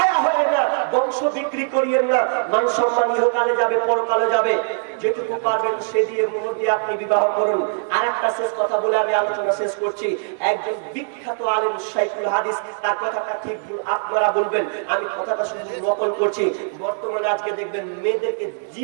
হয়েন না, বংশ বিক্রি করিয়েন না। মান সম্মান ইহকালে যাবে, পরকালে যাবে। যেটুকু পারবেন সে দিয়ে মুহূর্তে দিয়ে আপনি বিবাহ করুন। আর একটা শেষ কথা বলে আমি আলোচনা শেষ করছি। একজন বিখ্যাত আলেম শাইখুল হাদিস, তার কথাটা ঠিক আপনারা বলবেন, আমি কথাটা শুধু নকল করছি। বর্তমানে আজকে দেখবেন মেয়েদেরকে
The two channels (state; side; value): silent; left; digital silence